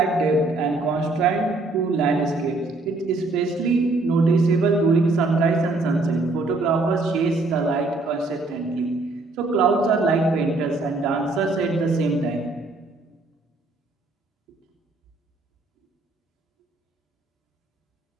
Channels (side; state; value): left; quieter; 3.2 dB